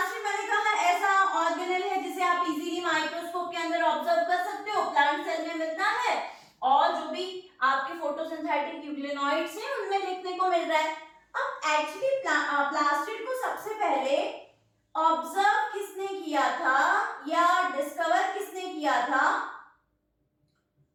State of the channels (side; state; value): both; identical; correlation 1.00